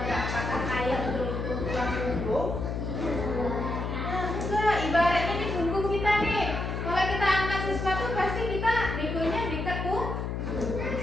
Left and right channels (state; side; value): noise; left; hum, 3 dB below the sound